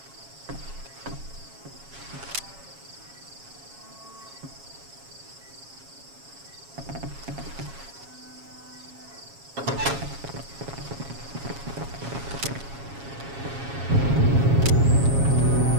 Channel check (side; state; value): left; late; 7.3 ms